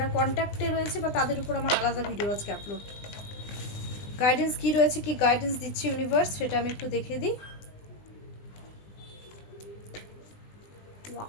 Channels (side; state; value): right; late; 20 ms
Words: কন্ট্যাক্টে রয়েছে বা তাদের উপর আমার আলাদা ভিডিও আজকে আপলোড। গাইডেন্স কি রয়েছে, কি গাইডেন্স দিচ্ছে ইউনিভার্স, সেটা আমি একটু দেখে দিই।